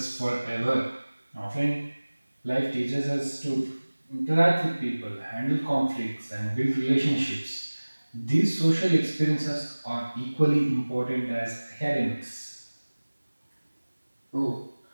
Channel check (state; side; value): inverted; both; correlation -1.00